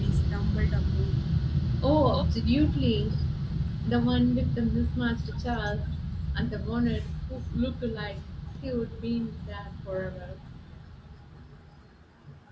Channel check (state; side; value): identical; both; correlation 1.00